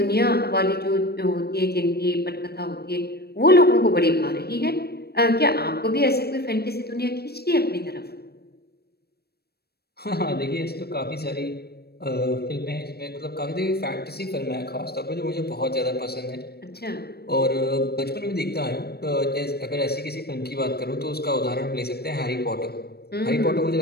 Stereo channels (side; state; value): right; late; 0.47 ms